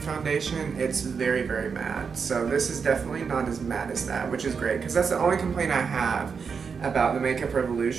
it's very, very matte. So this is definitely not as matte as that, which is great, because that's the only complaint I have about the Makeup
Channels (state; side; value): quieter; left; 5.9 dB